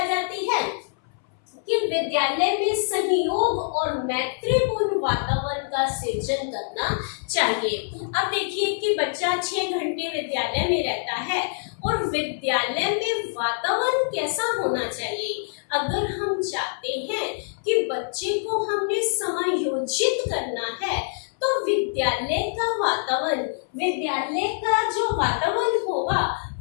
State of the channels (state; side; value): silent; right; 60 dB below the other